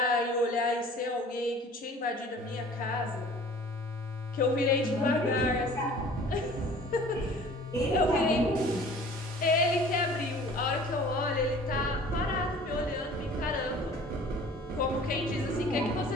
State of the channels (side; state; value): both; normal; correlation 0.47